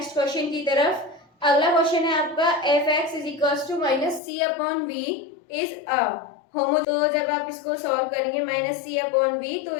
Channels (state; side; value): drops out; right; at 4.2 s